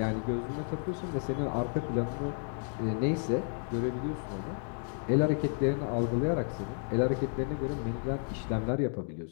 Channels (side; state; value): right; silent; 56 dB below the other